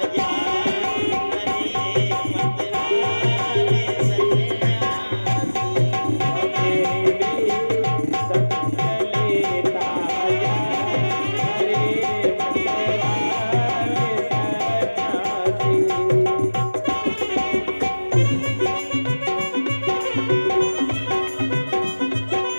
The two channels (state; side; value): inverted; both; correlation -1.00